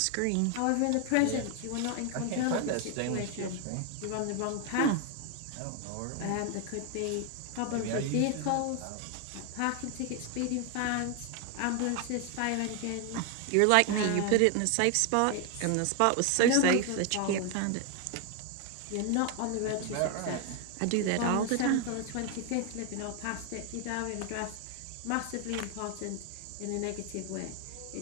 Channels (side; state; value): both; different; correlation 0.01